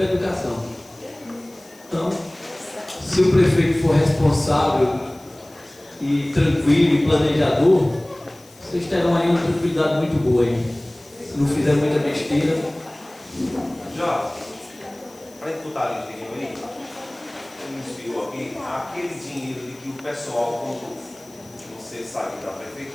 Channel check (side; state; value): left; noise; hiss, 25 dB below the sound